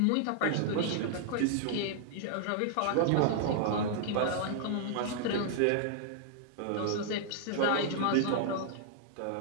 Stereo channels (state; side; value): different; both; correlation -0.01